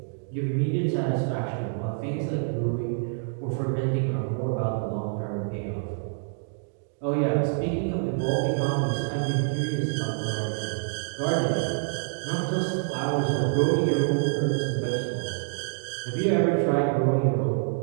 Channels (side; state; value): left; silent; digital silence